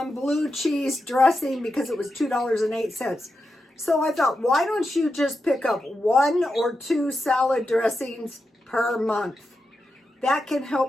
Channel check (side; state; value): both; normal; correlation 0.88